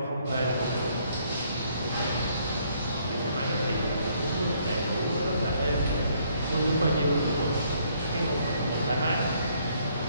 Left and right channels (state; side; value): inverted; both; correlation -0.67